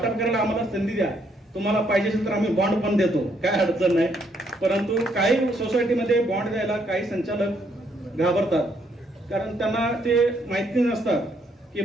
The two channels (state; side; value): normal; both; correlation 0.72